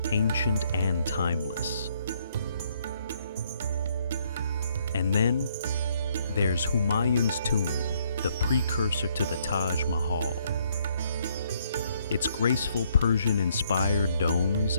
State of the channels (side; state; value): both; inverted; correlation -0.69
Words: ancient and timeless. And then there's Humayun's tomb, the precursor to the Taj Mahal. Its graceful Persian-inspired domes